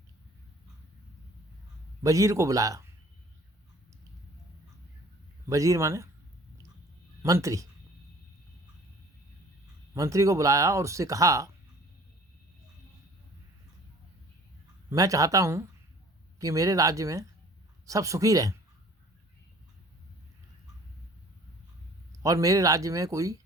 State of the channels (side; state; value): both; normal; correlation 0.50